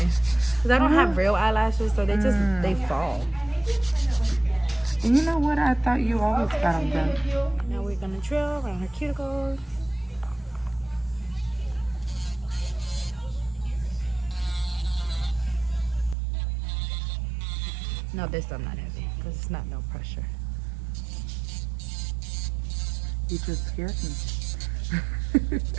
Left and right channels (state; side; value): drops out; left; at 16.2 s